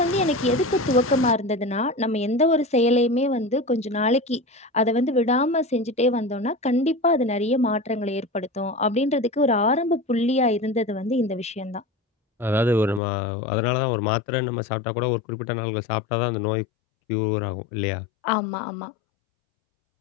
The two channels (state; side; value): drops out; right; at 13.0 s